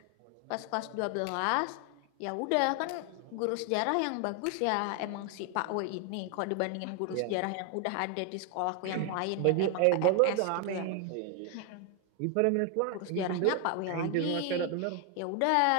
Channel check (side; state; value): both; different; correlation 0.01